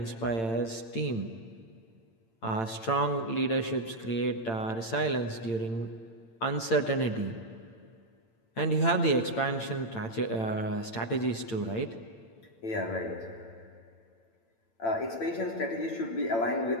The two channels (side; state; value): right; late; 8.9 ms